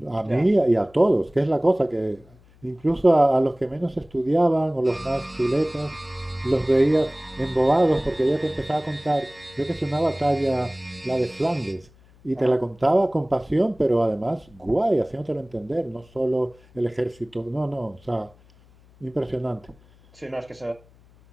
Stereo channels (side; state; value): left; noise; hum, 28 dB below the sound